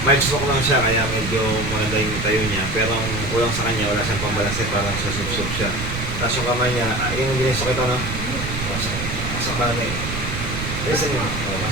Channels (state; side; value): noise; right; rumble, 5 dB below the sound